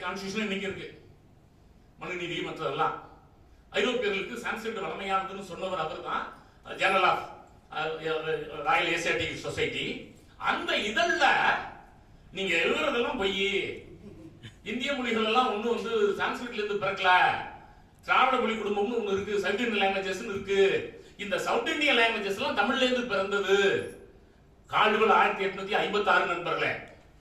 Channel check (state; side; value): identical; both; correlation 1.00